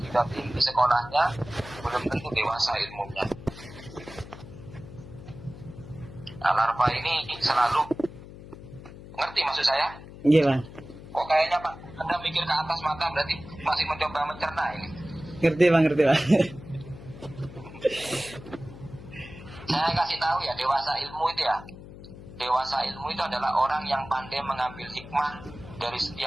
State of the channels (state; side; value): noise; left; hum, 15 dB below the sound